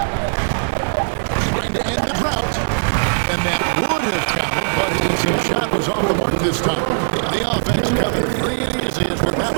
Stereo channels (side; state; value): left; silent; 56 dB below the other